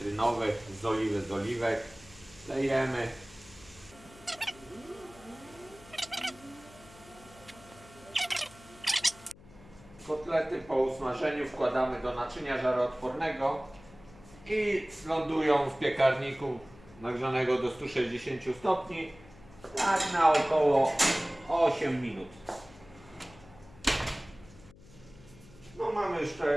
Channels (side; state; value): left; noise; hum, 22 dB below the sound